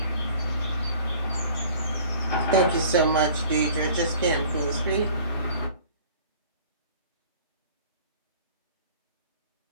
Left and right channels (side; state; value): both; inverted; correlation -0.48